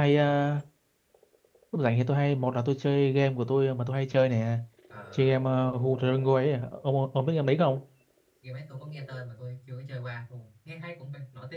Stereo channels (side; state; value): both; identical; correlation 1.00